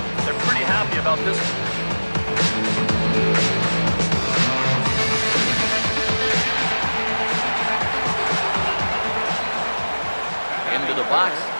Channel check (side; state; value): both; inverted; correlation -1.00